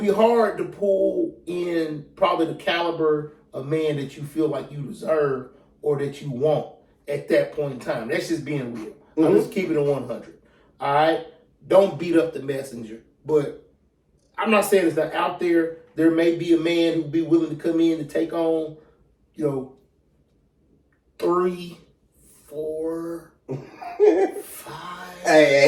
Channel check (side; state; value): both; identical; correlation 1.00